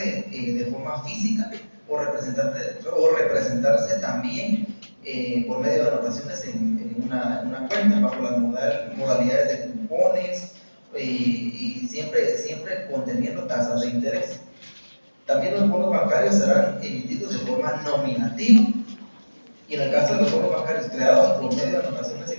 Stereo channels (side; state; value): both; inverted; correlation -1.00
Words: de forma física o representarse también por medio de anotaciones en una cuenta bajo las modalidades de cupones y siempre conteniendo tasas de interés. También los bonos bancarios serán emitidos de forma nominativa y en el caso de los bonos bancarios creados por medio de anotaciones